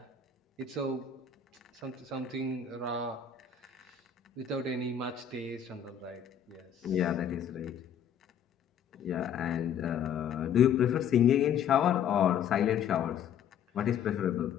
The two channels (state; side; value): quieter; right; 8.2 dB